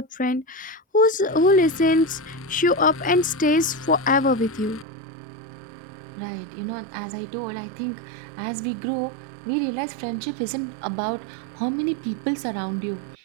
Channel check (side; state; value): left; drops out; at 4.9 s